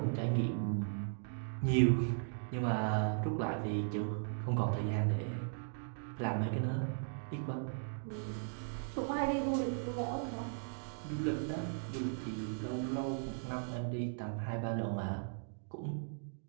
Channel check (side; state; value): left; silent; digital silence